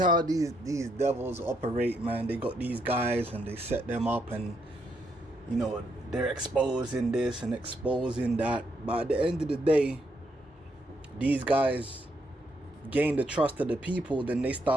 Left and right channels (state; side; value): normal; both; correlation 0.77